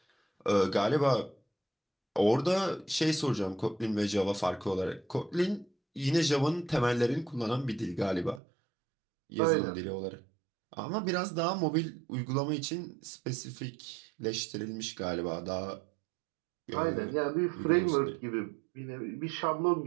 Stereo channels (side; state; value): left; drops out; at 8.4 s